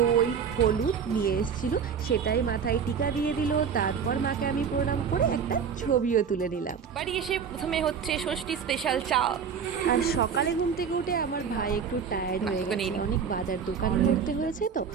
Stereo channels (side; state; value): left; quieter; 6.9 dB